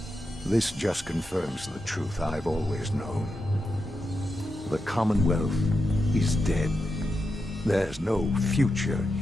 this just confirms the truth I've always known. The Commonwealth is dead. There's no future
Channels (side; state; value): both; normal; correlation 0.87